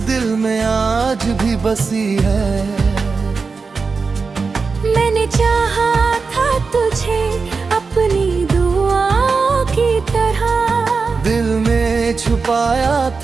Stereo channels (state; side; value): quieter; left; 4.6 dB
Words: दिल में आज भी बसी है। मैंने चाहा था तुझे अपनी दुआओं की तरह। दिल में छुपाया